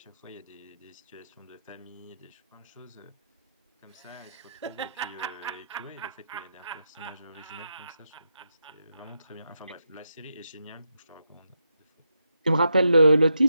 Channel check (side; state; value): both; inverted; correlation -0.85